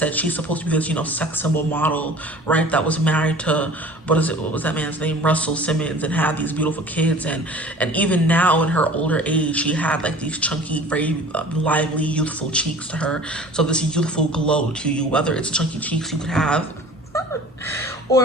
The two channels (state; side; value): normal; both; correlation 0.44